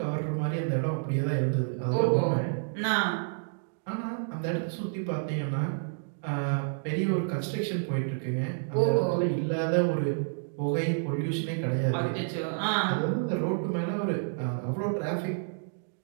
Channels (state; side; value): silent; left; digital silence